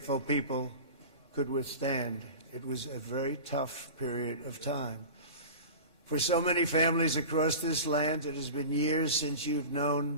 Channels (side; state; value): right; late; 3.6 ms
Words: people could withstand. It was a very tough period of time. For so many families across this land, it has been years since you've known